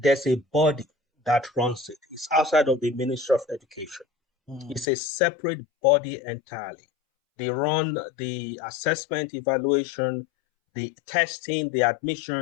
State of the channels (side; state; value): right; drops out; at 4.9 s